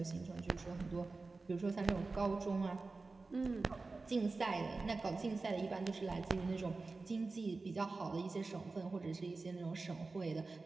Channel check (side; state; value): left; quieter; 3.7 dB